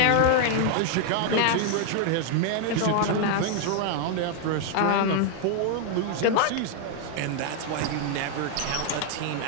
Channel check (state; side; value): different; both; correlation 0.00